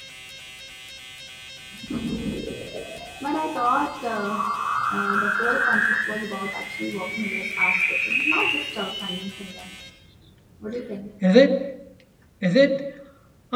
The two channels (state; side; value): identical; both; correlation 1.00